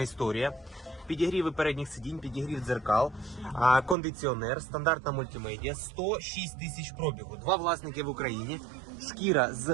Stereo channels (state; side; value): drops out; left; at 4.0 s